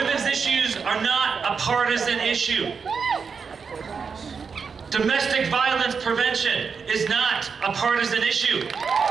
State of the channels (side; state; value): left; quieter; 5.7 dB